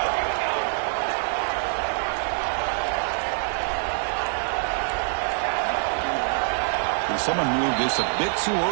And someone moved this a bit too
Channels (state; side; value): silent; left; 62 dB below the other